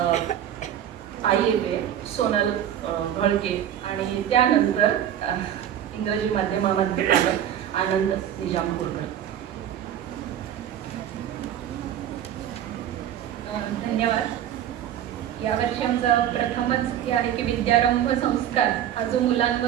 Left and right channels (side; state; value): left; quieter; 10.5 dB